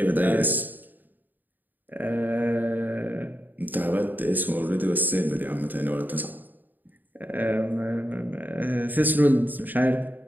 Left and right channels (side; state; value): left; late; 0.088 ms